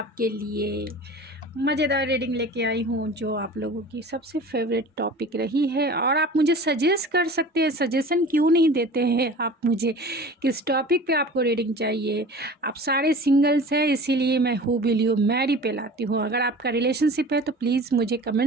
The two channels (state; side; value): normal; both; correlation 0.40